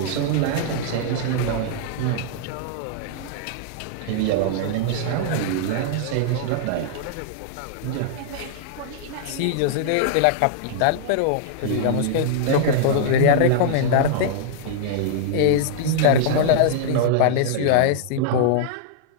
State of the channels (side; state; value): both; different; correlation -0.01